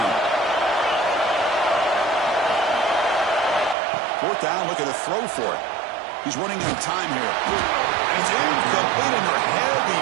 Fourth down, looking to throw for it. He's running out of time here. And it's incomplete under heavy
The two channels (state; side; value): drops out; left; at 3.8 s